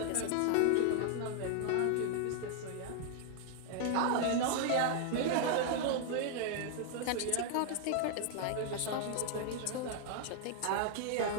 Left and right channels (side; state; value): both; different; correlation 0.00